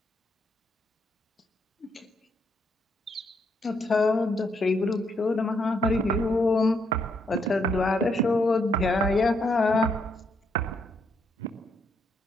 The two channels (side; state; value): both; normal; correlation 0.74